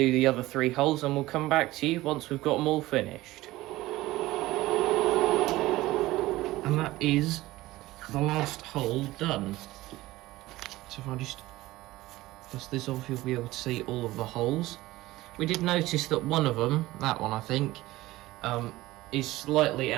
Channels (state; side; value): quieter; left; 17.8 dB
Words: the other 3 holes and we'll come back to you once we've got them all finished. And that is the last hole done. So if I just dust this off, you'll be able to see all of the holes. We did notice that one of them, that one I think, is slightly